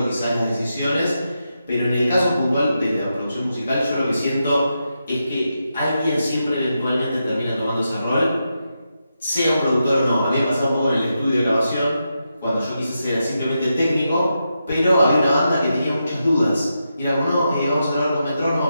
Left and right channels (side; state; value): both; inverted; correlation -0.86